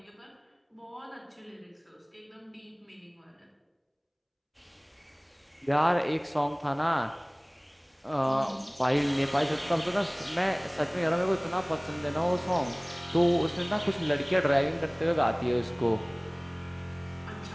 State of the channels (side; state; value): both; identical; correlation 1.00